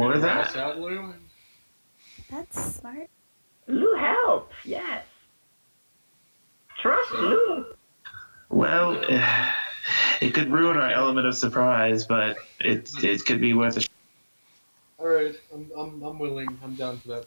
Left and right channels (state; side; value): inverted; both; correlation -1.00